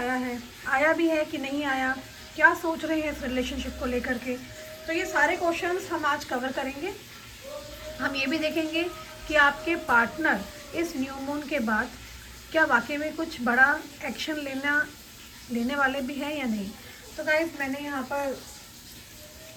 भी है कि नहीं आया, क्या सोच रहे हैं इस रिलेशनशिप को लेकर के, तो ये सारे क्वेश्चंस हम आज कवर करेंगे। हम ये भी देखेंगे कि आपके पार्टनर इस न्यू मून के बाद क्या वाकई में कुछ बड़ा एक्शन लेने वाले भी हैं या नहीं। तो गाइस, मैंने यहाँ पर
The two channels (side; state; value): both; identical; correlation 1.00